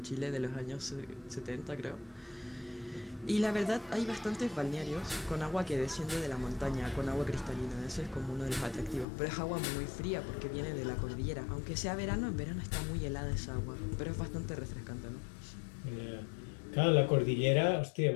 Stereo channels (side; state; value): right; drops out; at 9.1 s